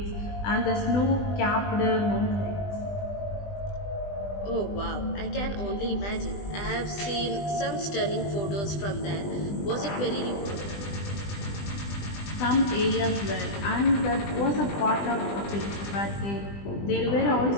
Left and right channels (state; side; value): late; right; 20 ms